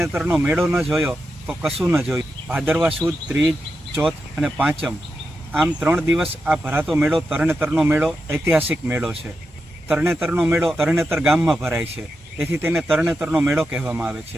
મેળો ન જોયો તો કશું ન જોયું. ભાદરવા સુદ, ત્રીજ, ચોથ અને પાંચમ આમ 3 દિવસ આ ભરાતો મેળો તરણેતરનો મેળો ઐતિહાસિક મેળો છે. તરણેતરનો મેળો તરણેતર ગામમાં ભરાય છે, તેથી તેને તરણેતરનો મેળો કહેવામાં આવે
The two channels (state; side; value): normal; both; correlation 0.88